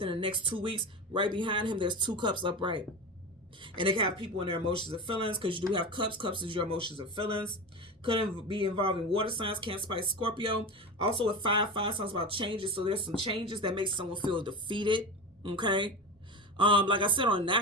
the next 2 weeks? Right behind him, there's 2 cups upright. And they can have people in their emotions and feelings because you do have cups. Cups is your emotions and feelings. Could be involving water signs, Cancer, Pisces, Scorpio. Also with 5 talks about changes. So there's some changes that make someone feel defeated. Okay. Like I said, on a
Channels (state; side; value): normal; both; correlation 0.24